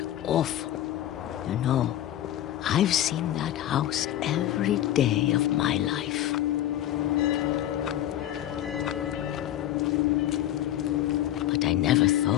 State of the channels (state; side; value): quieter; right; 12.5 dB